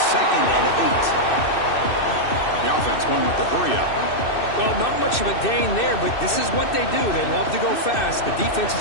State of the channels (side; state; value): right; late; 2.6 ms